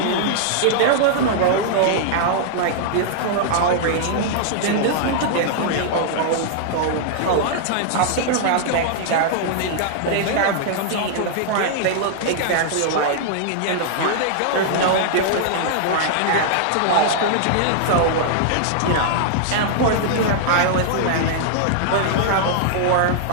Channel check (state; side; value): different; both; correlation -0.01